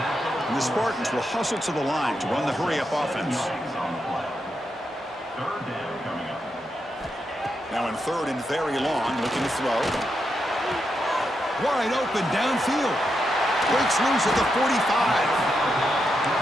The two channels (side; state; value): both; normal; correlation 0.84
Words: And the Spartans will hustle to the line to run the hurry-up offense. Now in 3rd and very long, looking to throw. Wide open downfield. Breaks loose at the 45.